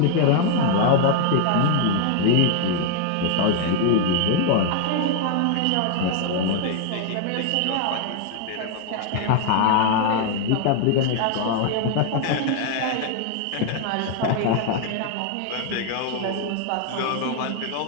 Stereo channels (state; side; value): different; both; correlation 0.00